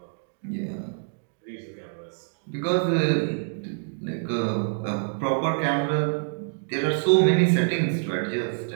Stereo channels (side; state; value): left; silent; digital silence